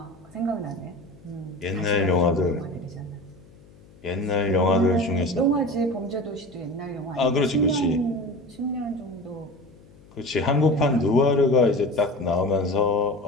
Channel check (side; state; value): left; noise; hum, 25 dB below the sound